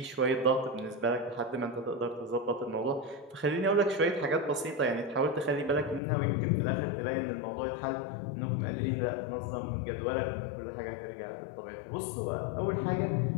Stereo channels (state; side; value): drops out; right; at 6.0 s